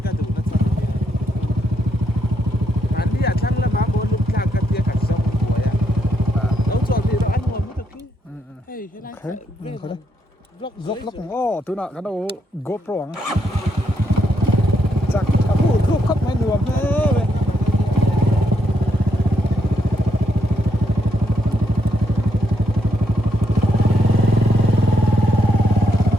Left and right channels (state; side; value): normal; both; correlation 0.78